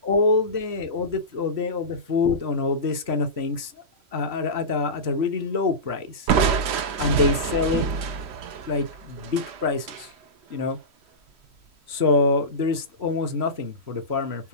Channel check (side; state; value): left; late; 3.1 ms